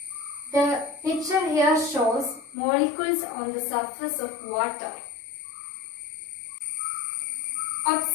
The picture here shows molecules on the surface of water.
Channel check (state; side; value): drops out; right; at 2.6 s